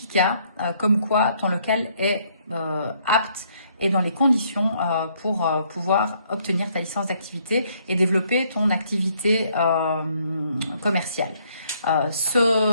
comme quoi ton local est apte et dans les conditions pour pouvoir obtenir ta licence d'activité et développer ton activité commerciale.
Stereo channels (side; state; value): both; inverted; correlation -0.68